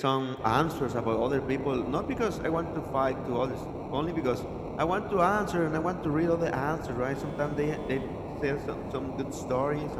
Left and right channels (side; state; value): both; identical; correlation 1.00